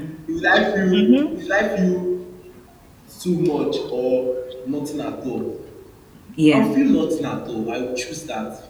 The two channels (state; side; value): identical; both; correlation 1.00